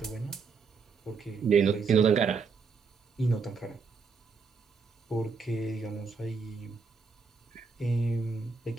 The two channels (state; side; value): quieter; left; 5.1 dB